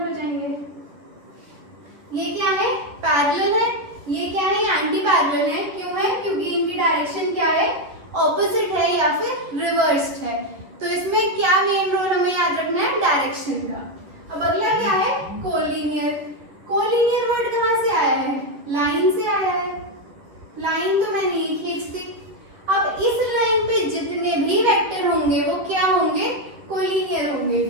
जाएंगे। ये क्या है, पैरेलल है, ये क्या है, एंटी पैरेलल है। क्यों है, क्योंकि इनकी डायरेक्शन क्या है, ऑपोजिट है या फिर रिवर्स्ड है। तो इसमें क्या मेन रोल हमें याद रखना है, डायरेक्शन का। अब अगला क्या है, कोलिनियर। कोलिनियर वर्ड कहाँ से आया है, लाइन से आया है। लाइन तो मैंने ये खींच दी। अब इस लाइन पे जितने भी वेक्टर होंगे वो क्या होंगे, कोलिनियर होंगे।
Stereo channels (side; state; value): left; late; 10 ms